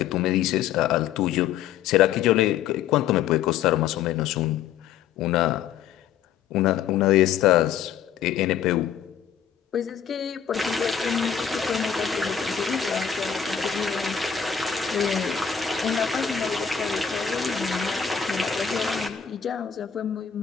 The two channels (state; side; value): quieter; right; 8.3 dB